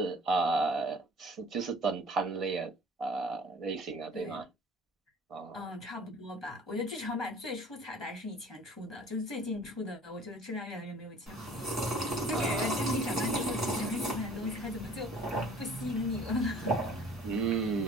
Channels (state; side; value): normal; both; correlation 0.50